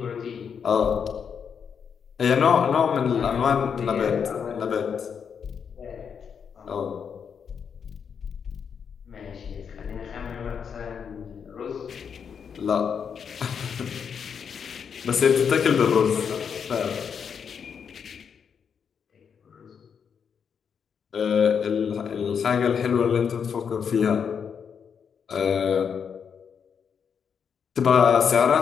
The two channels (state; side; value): quieter; right; 7.0 dB